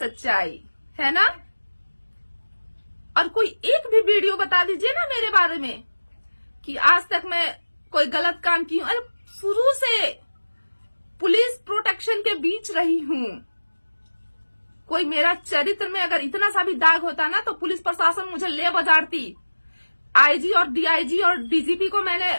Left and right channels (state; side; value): inverted; both; correlation -1.00